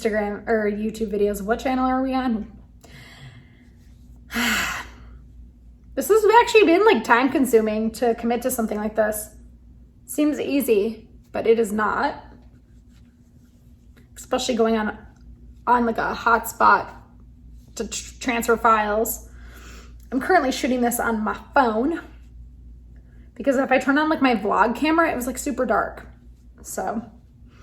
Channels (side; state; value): both; identical; correlation 1.00